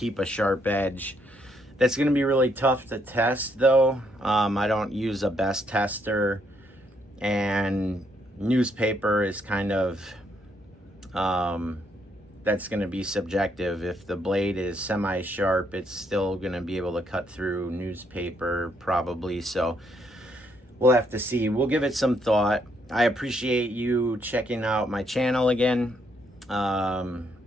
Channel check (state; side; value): normal; both; correlation 0.73